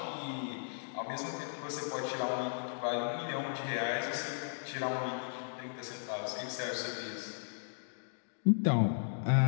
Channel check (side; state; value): right; silent; digital silence